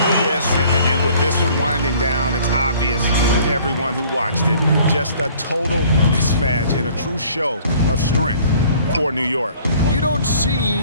and with this one winding down, it's obvious to everyone who watched it. Just a total mismatch and a true show of strength for New York. You don't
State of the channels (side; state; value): both; inverted; correlation -0.55